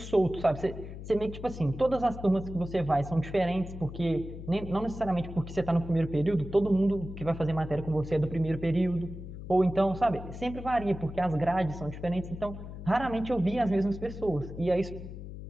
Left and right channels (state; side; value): noise; left; hum, 11 dB below the sound